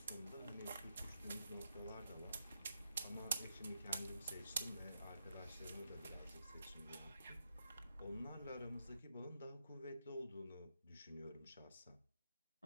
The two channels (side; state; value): both; inverted; correlation -0.83